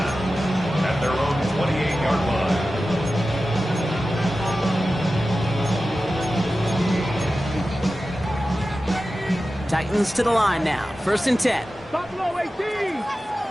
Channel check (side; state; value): both; normal; correlation 0.94